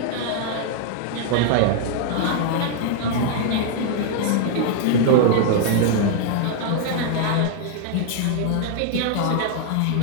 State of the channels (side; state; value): both; different; correlation 0.00